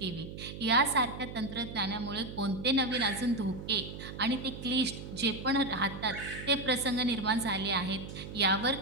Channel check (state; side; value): noise; right; hum, 10 dB below the sound